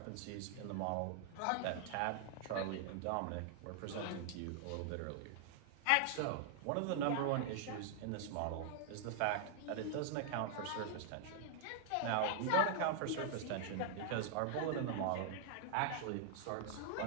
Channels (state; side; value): different; both; correlation -0.01